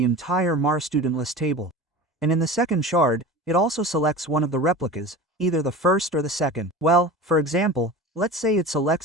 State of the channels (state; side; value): normal; both; correlation 0.34